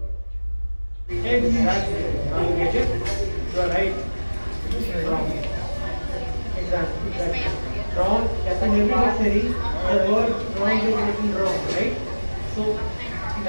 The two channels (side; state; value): both; inverted; correlation -1.00